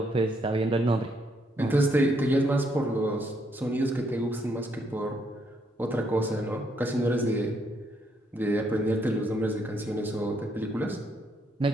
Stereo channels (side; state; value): both; normal; correlation 0.73